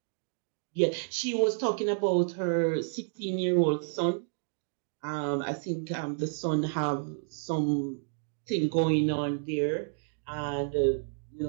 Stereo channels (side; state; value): left; silent; digital silence